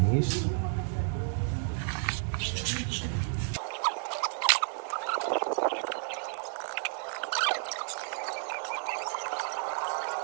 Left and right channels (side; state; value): left; silent; 57 dB below the other